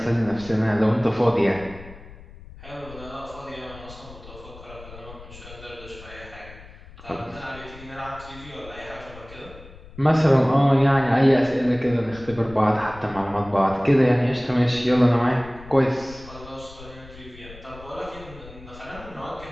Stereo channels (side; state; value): left; noise; rumble, 18 dB below the sound